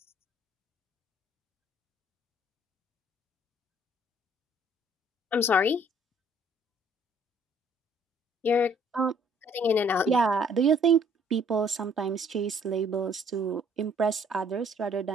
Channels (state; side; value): normal; both; correlation 0.60